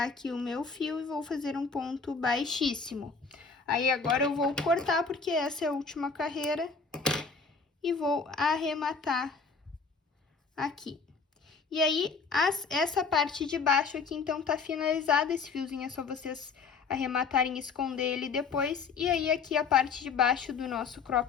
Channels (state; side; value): quieter; right; 5.0 dB